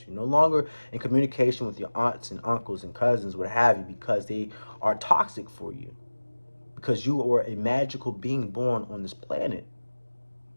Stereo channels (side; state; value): both; inverted; correlation -1.00